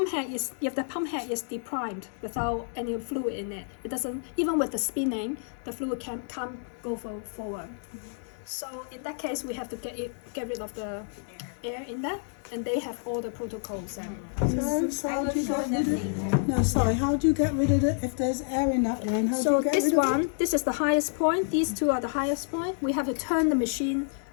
head is, if the pump head is deprimed without any fluid in it, it doesn't, even with the spinning, the fluid can't go forward. So in that case, we have to get rid of the air in there, and they have all the protocols. So how do you get rid of it? No, sorry, how do you get rid of it if there's air in that line? How do So you get this rid of one, this is the highest point. These two are the highest point. We have to turn the machine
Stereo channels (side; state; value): right; silent; 59 dB below the other